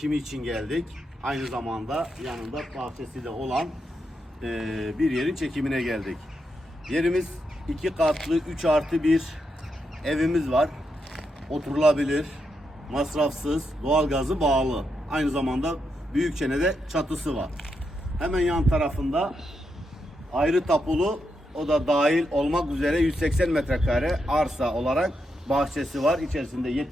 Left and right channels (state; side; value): normal; both; correlation 0.83